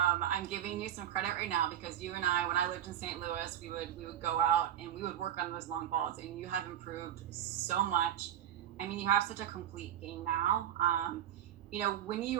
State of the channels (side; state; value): left; quieter; 11.1 dB